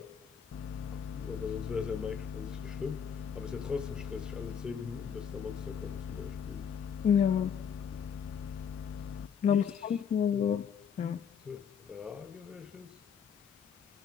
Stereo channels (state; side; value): quieter; right; 7.4 dB